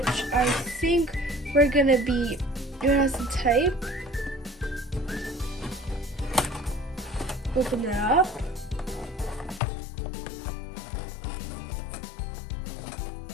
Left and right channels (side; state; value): right; drops out; at 9.6 s